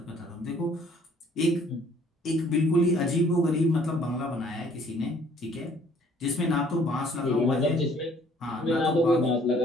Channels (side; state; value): both; normal; correlation 0.59